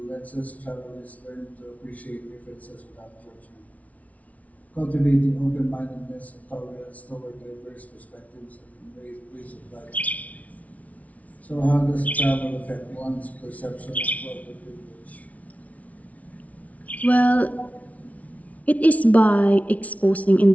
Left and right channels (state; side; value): late; right; 0.069 ms